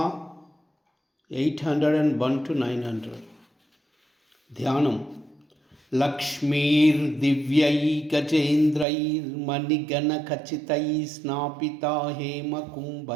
801 to 900. ధ్యానం. లక్ష్మీర్దివ్యైకచేంద్రైర్మణిగణఖచితై స్నాపితా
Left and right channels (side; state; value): left; drops out; at 8.8 s